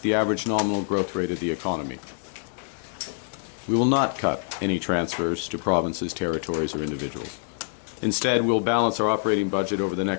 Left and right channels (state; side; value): silent; right; digital silence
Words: the average nominal growth rate of the economy. We will not cut any transfers to provinces, territories, or individuals. Instead, we'll balance our operating budget over the